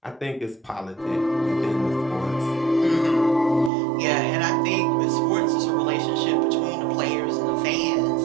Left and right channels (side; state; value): left; drops out; at 3.7 s